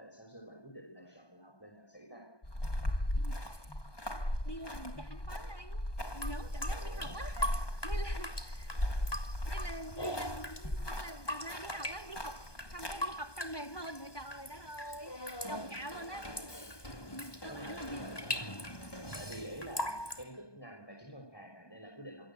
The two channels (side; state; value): right; late; 1.2 ms